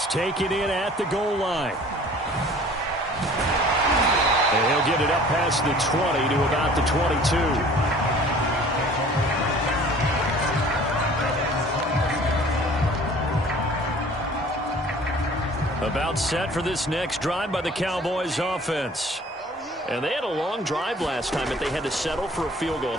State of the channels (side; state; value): both; normal; correlation 0.49